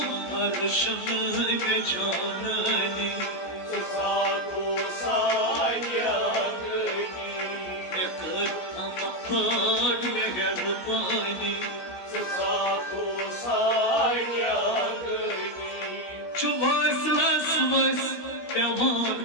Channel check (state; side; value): late; right; 16 ms